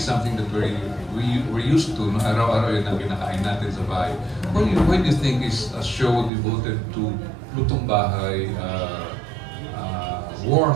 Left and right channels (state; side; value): drops out; left; at 6.3 s